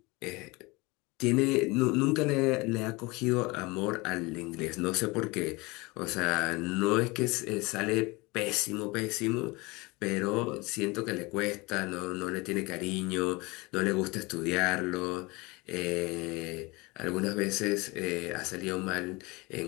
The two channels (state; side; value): quieter; right; 24.5 dB